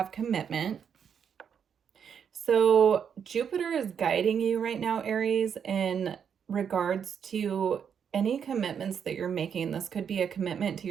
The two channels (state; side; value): quieter; left; 7.6 dB